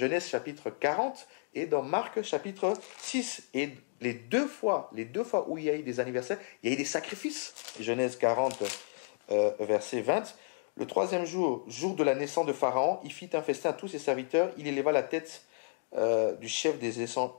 chapitre 40 et dans Marc chapitre 6. Et les deux fois où il y a eu des anniversaires, il y a eu des sacrifices. Genèse 40, verset 20. Le 3e jour, jour de la naissance de Pharaon, il fit un festin à tous ses serviteurs. Il éleva la tête du chef des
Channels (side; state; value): right; silent; 56 dB below the other